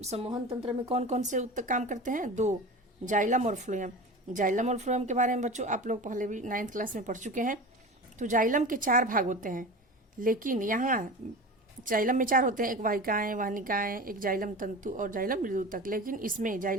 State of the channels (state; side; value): normal; both; correlation 0.32